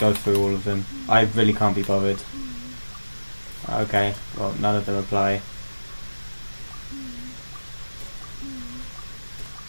go through all of them. I really can't be bothered. Okay, well, none of them apply.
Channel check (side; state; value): both; inverted; correlation -1.00